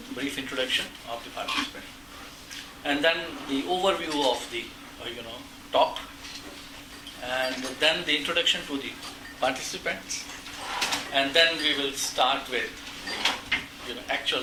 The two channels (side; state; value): both; identical; correlation 1.00